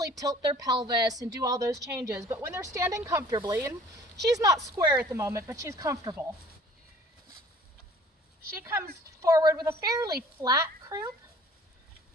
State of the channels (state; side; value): normal; both; correlation 0.51